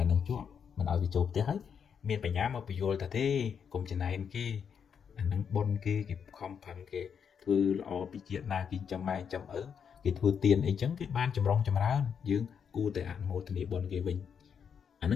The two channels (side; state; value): right; quieter; 7.2 dB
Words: នឹងជាប់មិនឲ្យវាចូលផ្ទះហើយមានបញ្ញាមកពយល់ថាទេកុំចំណែនគេអានឹងបុនគេខំប្រឹងគេធ្វើល្អពីជាតិណាគេចាំម៉ែចាំឪគេធ្វើទៀនអីចឹងគេបានចម្រុងចម្រើនយើងគួរតែអនុមោទនាបុនគេវិញអានឹ